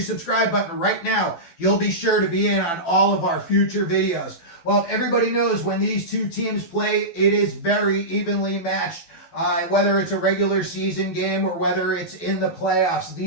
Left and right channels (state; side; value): late; right; 12 ms